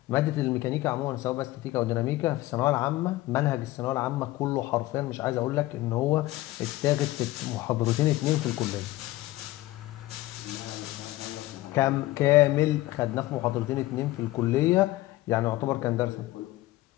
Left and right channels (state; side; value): quieter; right; 17.5 dB